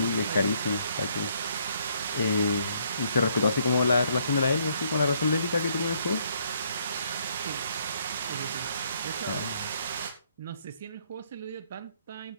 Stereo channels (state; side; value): inverted; both; correlation -0.68